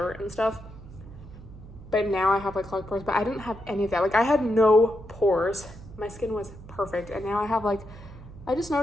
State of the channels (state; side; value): noise; right; hum, 17 dB below the sound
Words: and stuff, but now I have like clogged pores, but I didn't have any of that. Like I had no pores. My skin was perfect, and now I have like, I just